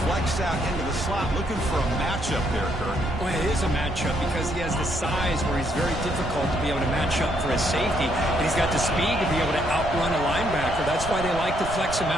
flexed out into the slot, looking for a matchup there, Kirk. Well, it is a matchup because he has the size where he's very difficult to be able to match up for his safety, and he's got the speed to be able to outrun a linebacker. That's why they like to flex him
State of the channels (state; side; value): noise; right; rumble, 8 dB below the sound